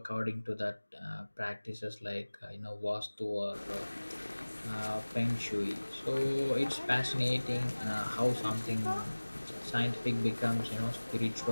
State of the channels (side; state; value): both; inverted; correlation -1.00